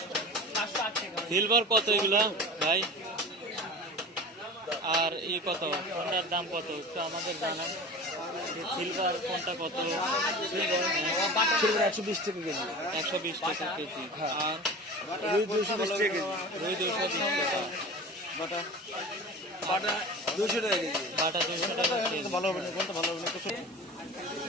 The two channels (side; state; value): both; normal; correlation 0.35